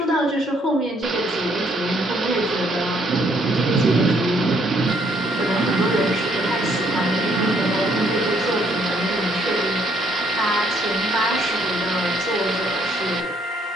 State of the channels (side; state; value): both; normal; correlation 0.67